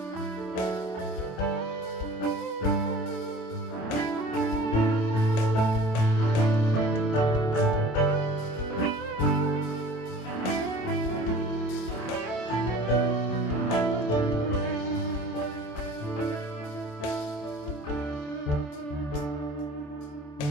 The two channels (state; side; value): late; right; 28 ms